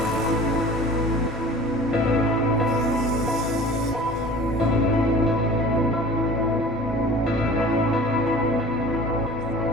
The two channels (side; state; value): both; normal; correlation 0.43